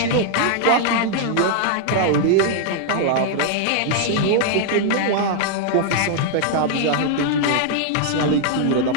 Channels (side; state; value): both; different; correlation -0.01